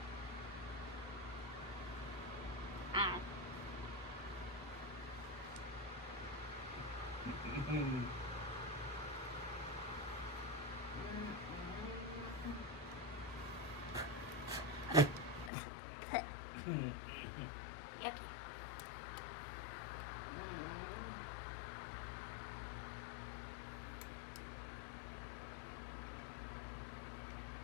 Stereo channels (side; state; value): right; drops out; at 15.5 s